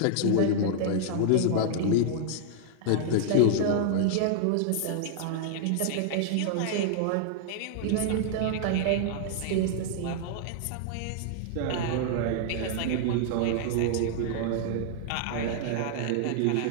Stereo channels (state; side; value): different; both; correlation -0.01